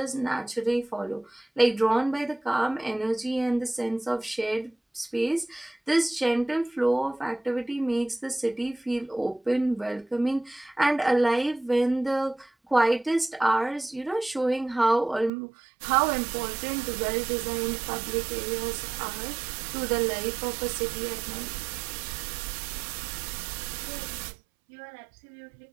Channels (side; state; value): left; drops out; at 15.3 s